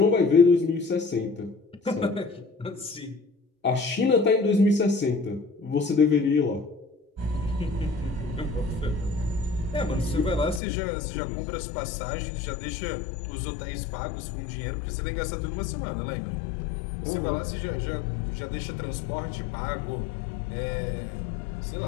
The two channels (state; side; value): drops out; right; at 10.6 s